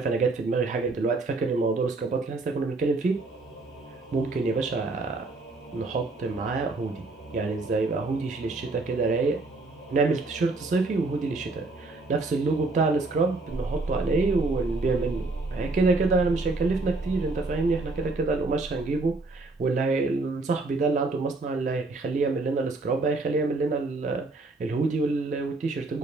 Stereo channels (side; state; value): left; quieter; 3.4 dB